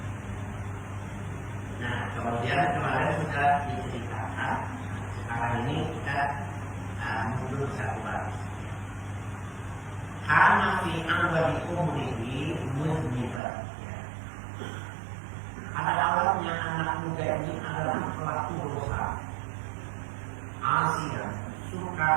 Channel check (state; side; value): drops out; left; at 13.4 s